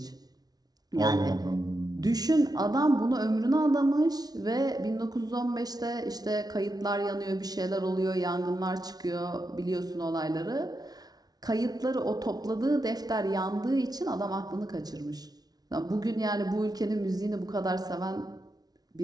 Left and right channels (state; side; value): late; left; 0.19 ms